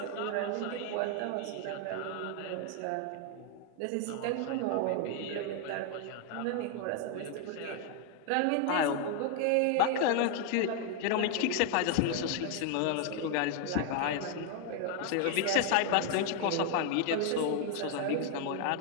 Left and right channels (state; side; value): different; both; correlation 0.00